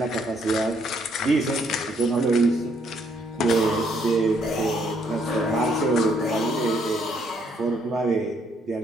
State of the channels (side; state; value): both; normal; correlation 0.70